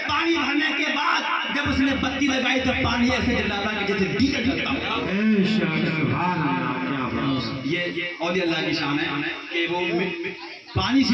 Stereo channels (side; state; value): both; identical; correlation 1.00